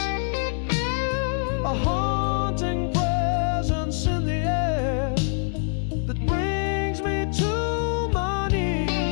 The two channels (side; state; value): right; silent; 61 dB below the other